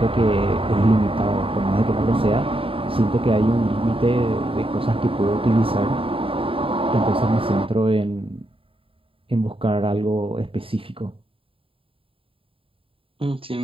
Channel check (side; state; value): left; late; 0.27 ms